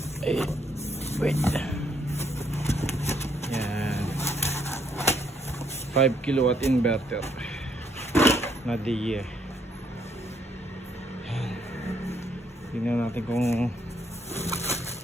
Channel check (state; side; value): normal; both; correlation 0.71